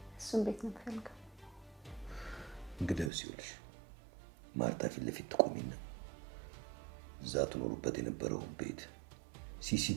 እሱን ቤት ነው የምፈልገው እንግዲህ ይኸውልሽ ማርታ ፊት ለፊት ትቆሚና እዛ ትኖሩበት የነበረውን ቤት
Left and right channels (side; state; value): left; drops out; at 3.1 s